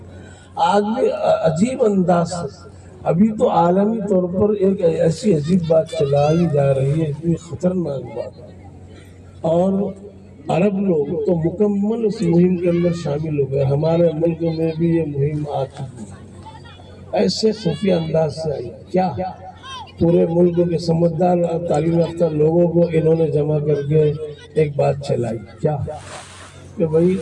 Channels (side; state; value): both; identical; correlation 1.00